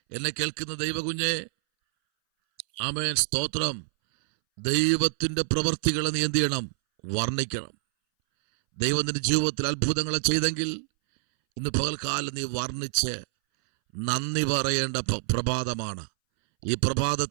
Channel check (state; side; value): silent; left; 60 dB below the other